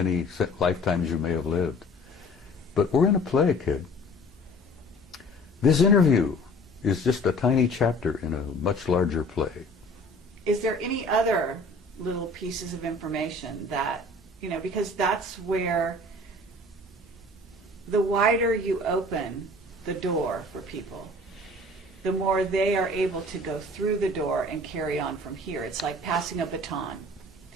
lifetimes you may have lived. But we're in a play, kid. This interview is just a tiny chapter in a much larger play. Is there any other little pieces of information that, you know, because that's where the wider you open the door for people, the more they are able to go through the door and carry on from here. It's like passing a baton.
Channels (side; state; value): both; normal; correlation 0.47